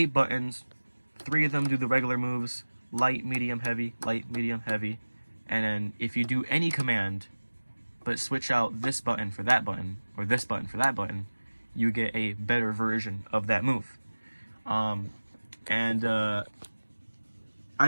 buttons, 3 of them do the regular moves, light, medium, heavy, light, medium, heavy. And then if you do any command, but switch out this button for that button, or this button for that button, you get a better version of that move. I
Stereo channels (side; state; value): both; inverted; correlation -1.00